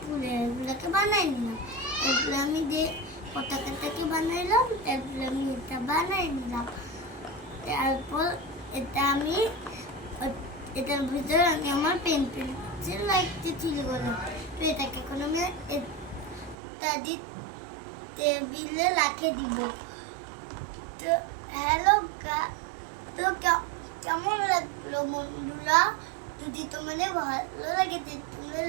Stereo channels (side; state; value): left; drops out; at 16.6 s